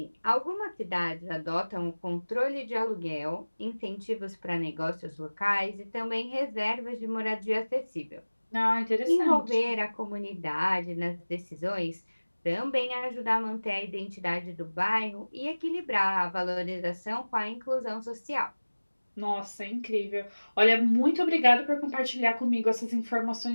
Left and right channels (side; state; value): both; inverted; correlation -1.00